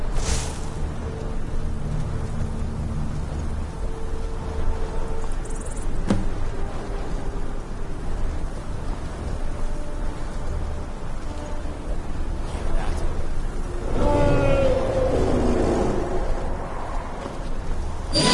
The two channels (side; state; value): both; identical; correlation 1.00